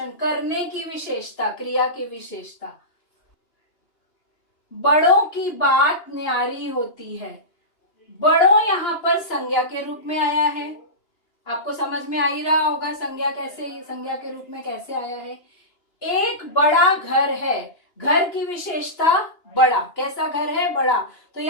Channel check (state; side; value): late; right; 2.8 ms